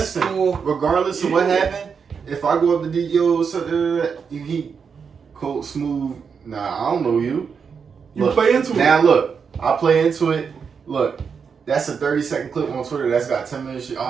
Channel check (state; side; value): quieter; left; 6.2 dB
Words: Regardless of what happened, if I go up to DDO, he cold smooth. Nah, I don't know you. You Look, play into it. Now look, I play into it. Look, that's a 30-second clip on Twitter. That's got 10 minutes.